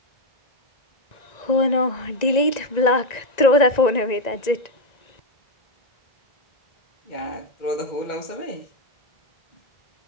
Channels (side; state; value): right; late; 1.9 ms